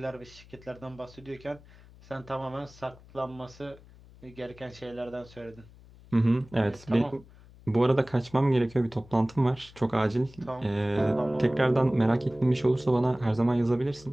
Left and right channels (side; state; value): left; noise; hum, 23 dB below the sound